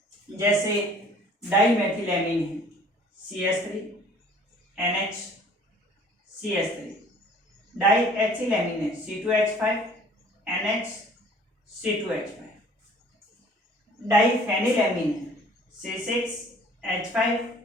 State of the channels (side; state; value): both; normal; correlation 0.53